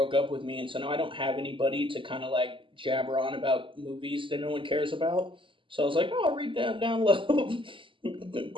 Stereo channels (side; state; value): left; late; 0.25 ms